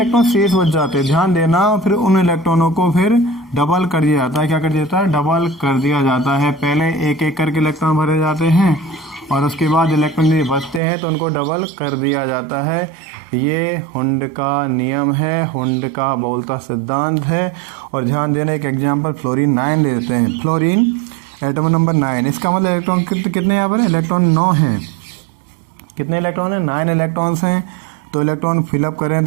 शेष बच जाते हैं। ध्यान देना। फिर उन इलेक्ट्रॉनों को फिर डबल कर दिया जाता है। क्या कर दिया जाता है? डबल कर दिया जाता है। पहले एक एक करके इलेक्ट्रॉन भरे जाते हैं और उसके बाद इलेक्ट्रॉन यदि बचते हैं तो उनको डबल कर दिया जाता है। ये हुंड का नियम है, हुंड का बहुलता सिद्धांत है। और ध्यान देना, एक एग्जाम्पल फ्लोरीन 9 ले लेते हैं। फ्लोरीन एटम नंबर 9, इसका मतलब इलेक्ट्रॉन कितने यहाँ पर? इलेक्ट्रॉन 9 हैं। कितने इलेक्ट्रॉन हैं? 9 इलेक्ट्रॉन्स हैं। तो इलेक्ट्रॉन फिलअप करें,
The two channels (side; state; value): left; drops out; at 10.8 s